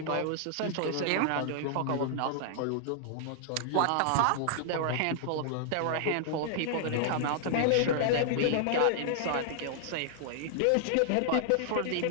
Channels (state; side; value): different; both; correlation -0.01